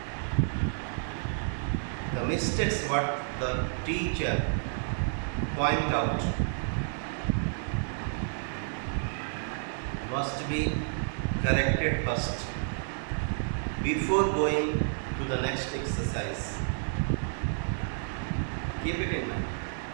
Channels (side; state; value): left; silent; 58 dB below the other